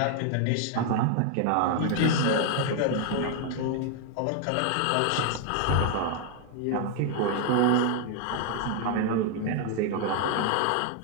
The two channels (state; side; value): different; both; correlation 0.00